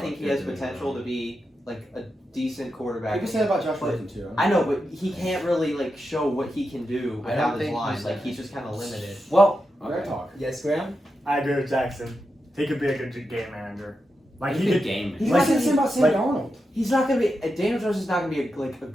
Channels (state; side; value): normal; both; correlation 0.88